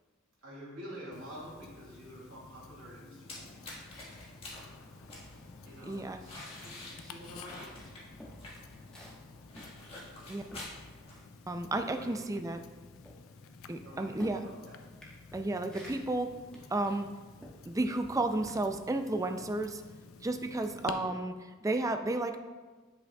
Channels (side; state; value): both; normal; correlation 0.66